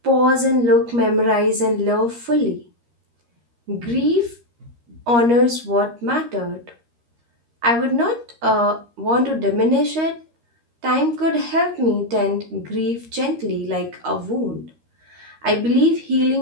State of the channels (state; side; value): late; left; 13 ms